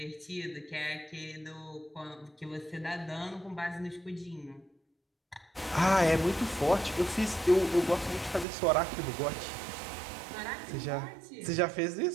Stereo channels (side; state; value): left; drops out; at 8.5 s